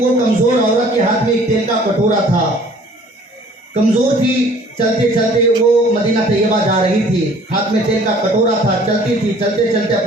कमज़ोर औरत के हाथ में एक तेल का कटोरा था, कमज़ोर थी, चलते चलते वो मदीना तैयबा जा रही थी, हाथ में तेल का कटोरा था, चलती थी, चलते चलते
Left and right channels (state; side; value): normal; both; correlation 0.53